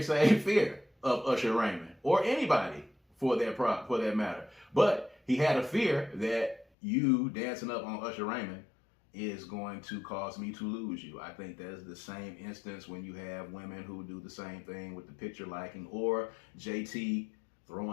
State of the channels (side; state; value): right; drops out; at 6.7 s